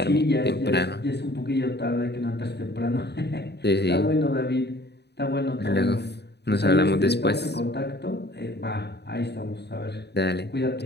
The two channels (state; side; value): late; right; 0.49 ms